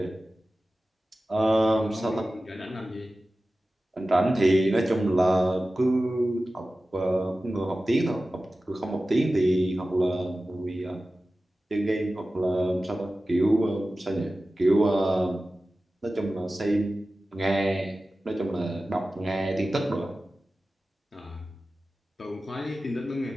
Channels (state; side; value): normal; both; correlation 0.95